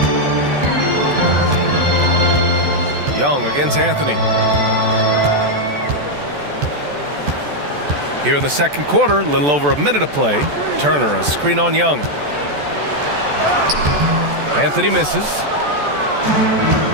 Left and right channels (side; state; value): left; late; 14 ms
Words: Young against Anthony. Here in the second quarter, a little over a minute of play. Turner, a screen on Young. Anthony misses.